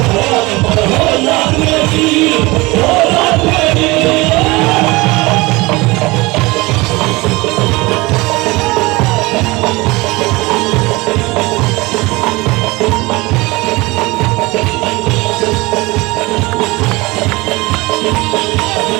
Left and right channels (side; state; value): left; quieter; 22.7 dB